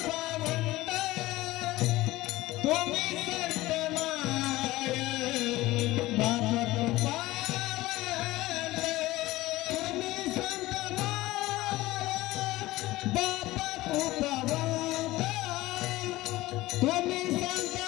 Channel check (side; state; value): right; quieter; 18.1 dB